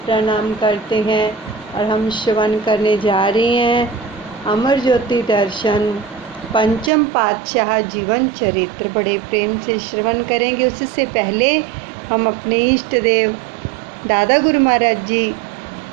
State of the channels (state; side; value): drops out; left; at 6.9 s